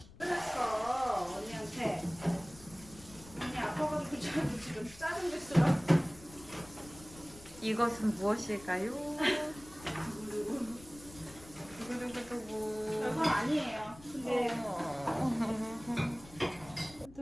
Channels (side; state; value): left; noise; rumble, 20 dB below the sound